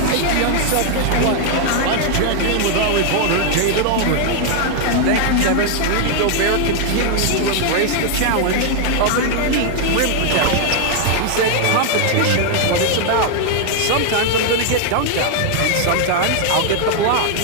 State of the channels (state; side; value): different; both; correlation 0.00